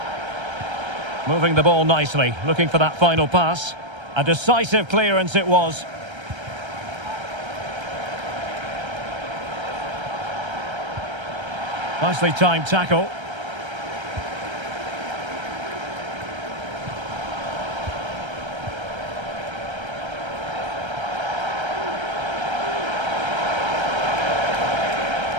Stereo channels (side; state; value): left; late; 1.3 ms